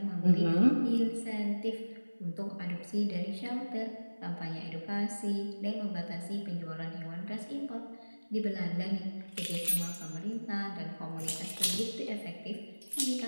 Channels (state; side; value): inverted; both; correlation -1.00